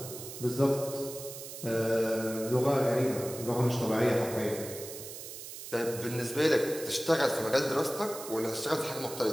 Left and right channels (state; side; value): noise; right; hiss, 11 dB below the sound